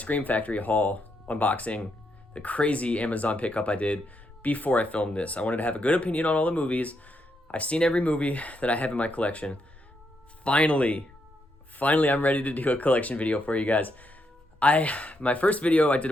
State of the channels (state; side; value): normal; both; correlation 0.79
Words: Factory haul unboxing, the crazy Amazon pickup I did before I filmed this. I wanted to have a good opinion on all the movies. I've seen every movie that I have in my collection. Finally, I'm ready to do a collection video for you guys. My first video I did